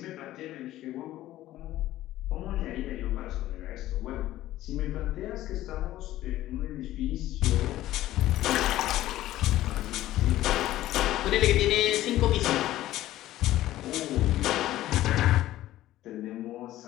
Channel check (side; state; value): right; quieter; 14.7 dB